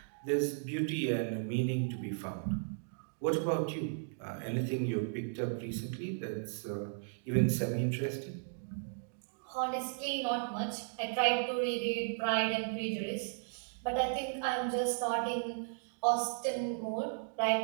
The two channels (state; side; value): silent; left; digital silence